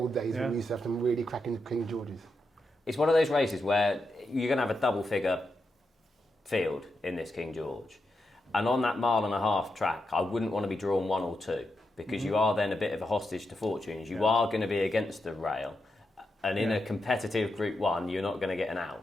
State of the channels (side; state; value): both; normal; correlation 0.86